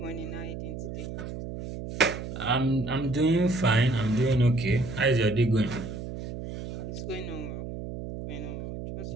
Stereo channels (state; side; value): noise; right; hum, 8 dB below the sound